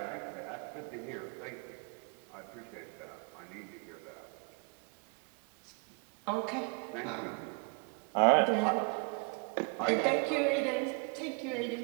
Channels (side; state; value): left; quieter; 35.2 dB